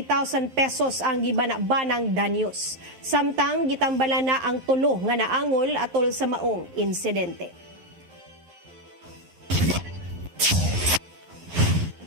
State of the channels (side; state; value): left; late; 11 ms